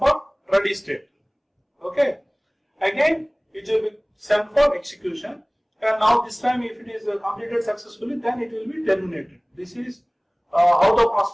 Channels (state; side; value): identical; both; correlation 1.00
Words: ready state. Okay, again it will be sent for execution, and now this time if it is completed successfully, then it will be terminated. This is how the